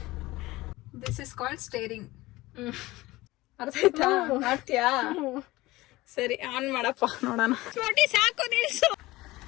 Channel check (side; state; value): right; quieter; 19.2 dB